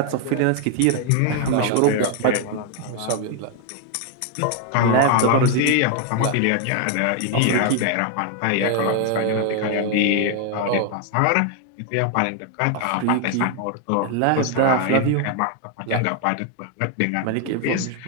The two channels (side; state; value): both; different; correlation 0.00